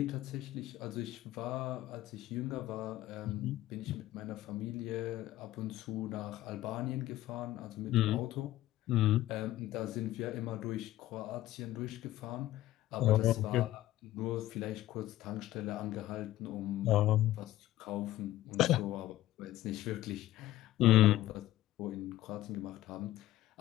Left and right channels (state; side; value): quieter; right; 15.0 dB